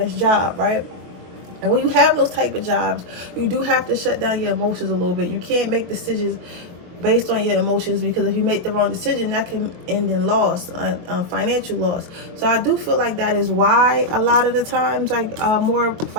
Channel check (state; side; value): late; left; 22 ms